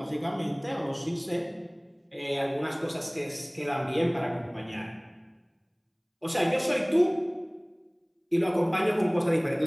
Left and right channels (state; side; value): identical; both; correlation 1.00